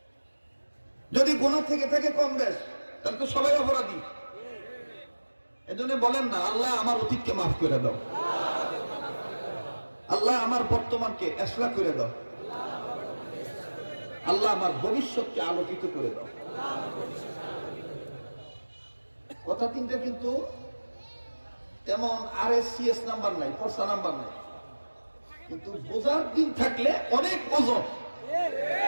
যদি গুনাহ থেকে থাকে কম বেশ, তাহলে তো সবাই অপরাধী। এজন্য বলেন না, আল্লাহ আমার অতীতকে মাফ করে দাও, আল্লাহ আমার বর্তমানকে ইসলাহ করে দাও, আল্লাহ আমার ভবিষ্যৎকে আলোকিত করে দাও। কথা তিনটা কিন্তু তেমন RSCS নাম্বার নাই, পরসা নাম্বার নাই, কিন্তু বোঝার দিন থাকলে অনেক ওজন।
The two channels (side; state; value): both; inverted; correlation -1.00